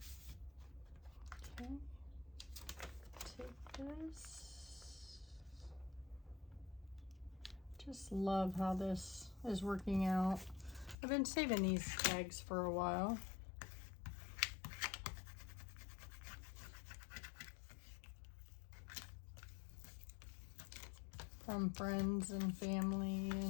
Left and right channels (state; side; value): drops out; right; at 11.0 s